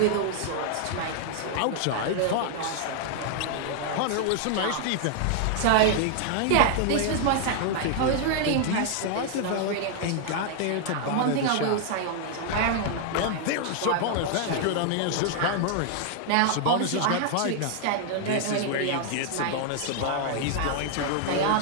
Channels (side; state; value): both; different; correlation 0.00